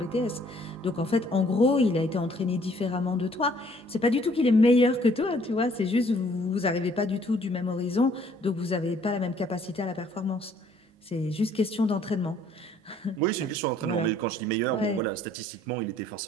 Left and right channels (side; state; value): both; normal; correlation 0.61